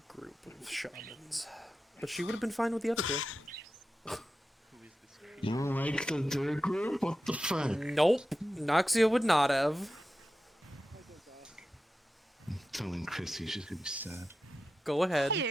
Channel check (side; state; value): both; normal; correlation 0.92